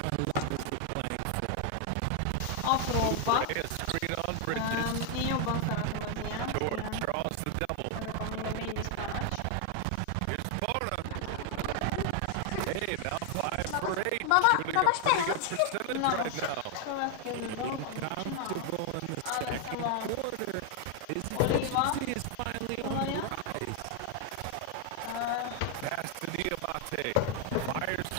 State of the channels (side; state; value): both; different; correlation 0.00